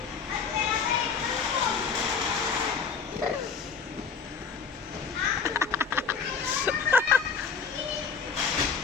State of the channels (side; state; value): right; quieter; 6.0 dB